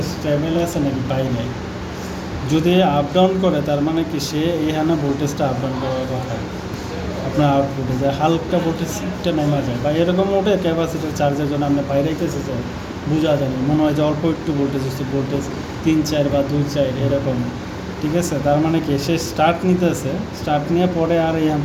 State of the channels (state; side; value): identical; both; correlation 1.00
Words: স্টেবল আছে নাকি পাই নাই, যদি আপ ডাউন করে তার মানে কি সে এখানে ভোল্টেজটা আপ ডাউন করার কথা, আপনার আউটপুটে যায় হালকা ভোল্টেজটা নেমা যায় বা এরকম ওঠে ক্যাপাসিটার চার্জের জন্য আপনি বাইরে রেখেছে যে বোঝা যায় না, মনে হয় যে অল্প একটু ভোল্টেজ হচ্ছে, ভোল্টেজ 3-4 বা 2-4 এরকম, ঠিক আছে। তার মানে কি সে স্টার্ট নিতেছে, স্টার্ট নিয়ে পরে আর এখান